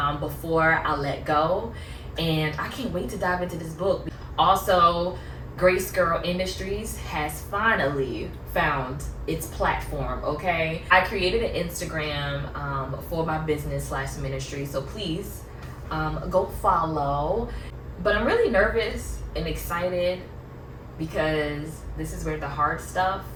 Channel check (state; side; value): identical; both; correlation 1.00